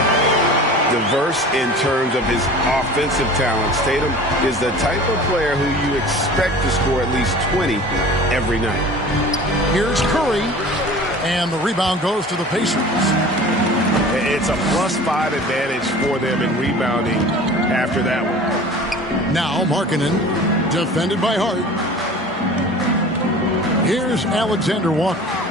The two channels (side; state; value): both; normal; correlation 0.41